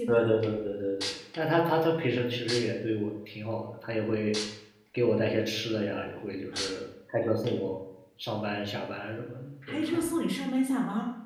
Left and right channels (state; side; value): identical; both; correlation 1.00